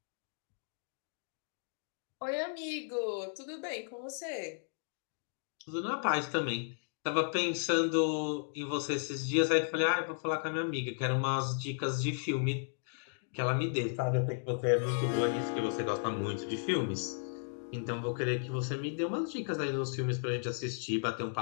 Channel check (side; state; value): right; silent; digital silence